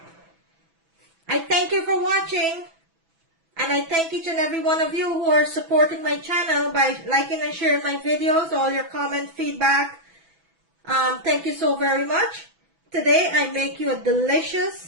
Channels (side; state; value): left; late; 6.1 ms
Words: I thank you for watching. And I thank each and every one of you who are supporting my channel by liking and sharing my videos, all your comment, feedback. Thank you so very much. Today I make you a